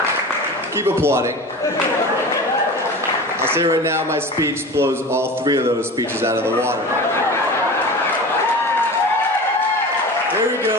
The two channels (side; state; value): both; normal; correlation 0.33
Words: keep applauding. I'll say right now, my speech blows all three of those speeches out of the water. There we